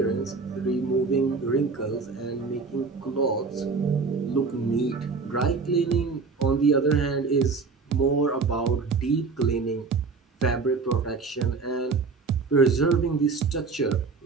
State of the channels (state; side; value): quieter; left; 4.5 dB